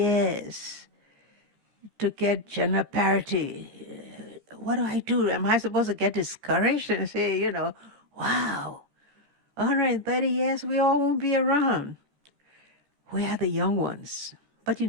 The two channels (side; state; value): left; late; 14 ms